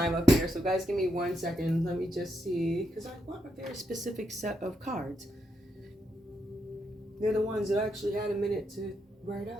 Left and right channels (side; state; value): both; normal; correlation 0.81